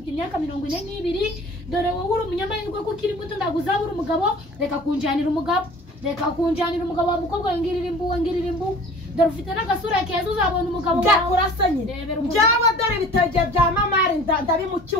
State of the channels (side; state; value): both; normal; correlation 0.45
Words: imyaka 42 dore wowe uri umunyamahirwe ko kiri muto ndaguzabura umugabo reka kunjanira umugabo wa mukobwa ngirira imbu dore ufite n'agasura keza uzabona umugabo wawe byakurasanye byawe dore ibitege bya mamari